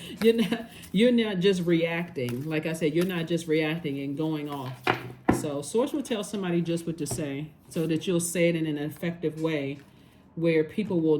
You're not just reacting. Like I said, you're not just reacting and going off. So Source will tell somebody just what to say, so that you'll say it in an effective way where people will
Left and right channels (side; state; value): both; identical; correlation 1.00